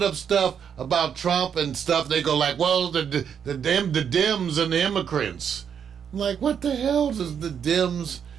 up stuff about Trump and stuff. They go like, well, the Dems and the immigrants. I'm like, what the hell does the Dems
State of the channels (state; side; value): quieter; left; 7.8 dB